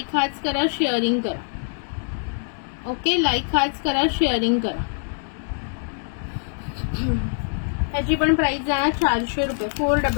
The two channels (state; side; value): silent; right; digital silence